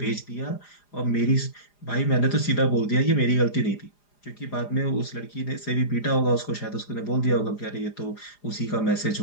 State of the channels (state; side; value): late; right; 4.9 ms